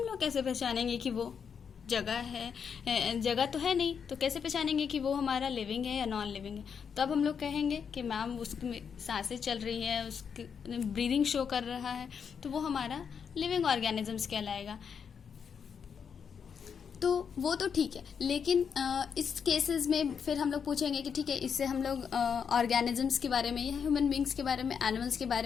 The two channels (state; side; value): quieter; right; 6.8 dB